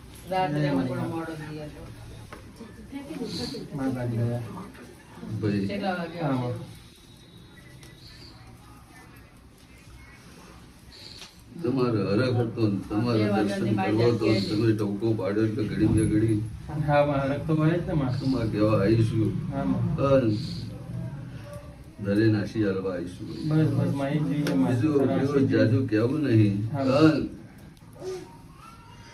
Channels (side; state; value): both; identical; correlation 1.00